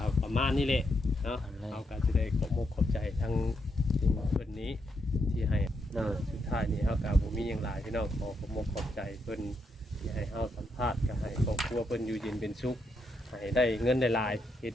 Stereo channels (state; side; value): normal; both; correlation 0.80